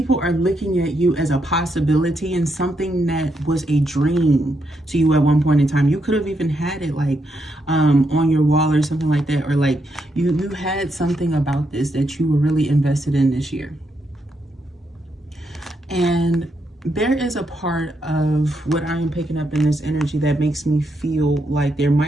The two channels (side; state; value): both; normal; correlation 0.80